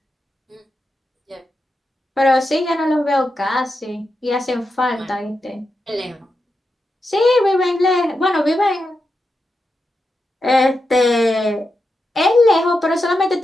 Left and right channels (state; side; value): normal; both; correlation 0.88